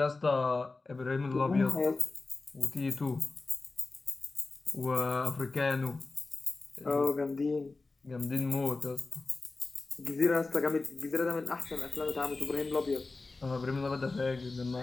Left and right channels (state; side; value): quieter; right; 3.6 dB